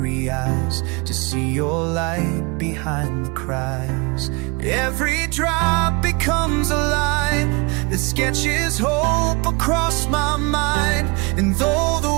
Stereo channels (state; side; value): quieter; left; 28.9 dB